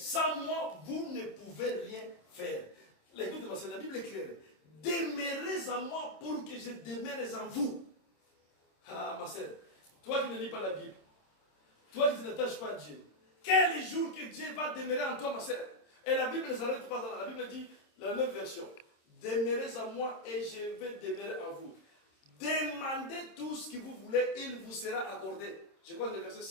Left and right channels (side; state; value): right; late; 26 ms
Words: moi, vous ne pouvez rien faire. L'écoute de la Bible est claire. Demeurez en moi pour que je demeure en vous. Ah, ma sœur, toi qui ne lis pas la Bible, toi qui ne t'attaches pas à Dieu, quel jour que Dieu va demeurer en toi, ma sœur? Et la Bible ne s'arrête pas là. La Bible dit, la même version, demeurez en moi et je vais demeurer en vous. Demandez tout ce que vous voulez, il vous sera accordé. Je crois que le verset